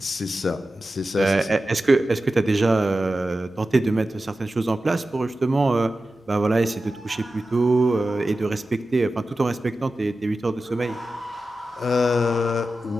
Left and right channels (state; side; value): normal; both; correlation 0.93